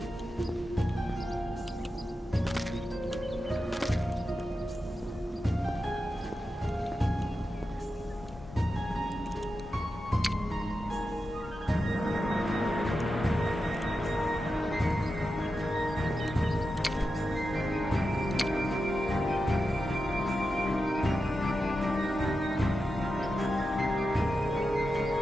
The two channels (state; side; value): normal; both; correlation 0.90